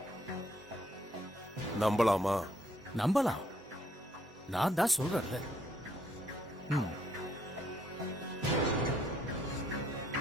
நம்பலாமா? நம்பலாம், நான் தான் சொல்றேன்ல.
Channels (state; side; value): normal; both; correlation 0.69